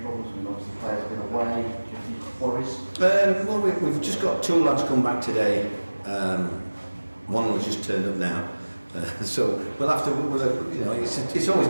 problems. I mean, obviously, players have been away. Do you have any worries? Well, we've just got two lads come back today. One was just turned up now. So we'll have to. It's always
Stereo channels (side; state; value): both; inverted; correlation -1.00